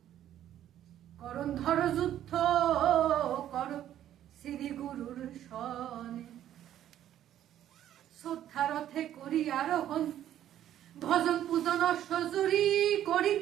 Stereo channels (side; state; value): left; quieter; 11.5 dB